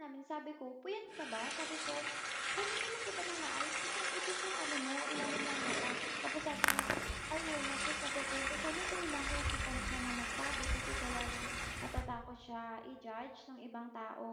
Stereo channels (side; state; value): both; identical; correlation 1.00